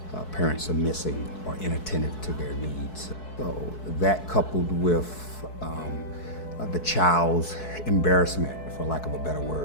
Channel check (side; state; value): right; late; 4.6 ms